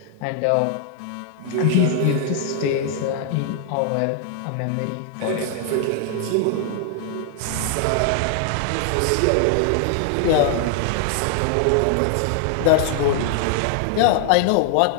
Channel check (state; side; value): different; both; correlation 0.00